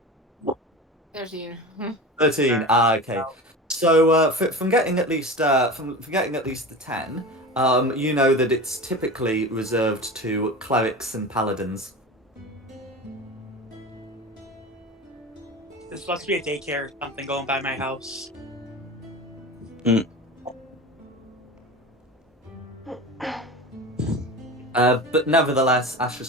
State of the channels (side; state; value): both; normal; correlation 0.31